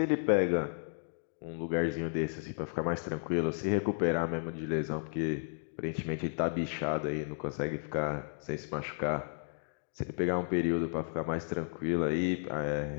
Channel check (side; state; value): right; silent; digital silence